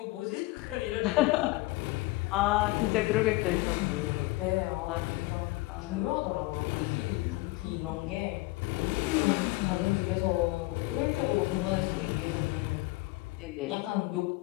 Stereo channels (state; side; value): quieter; right; 21.4 dB